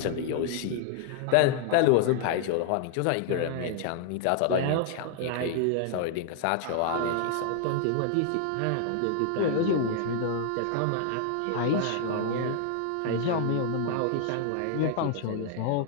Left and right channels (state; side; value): different; both; correlation 0.00